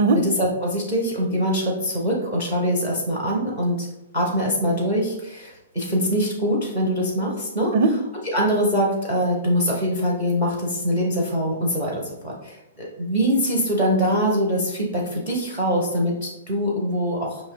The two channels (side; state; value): both; inverted; correlation -0.36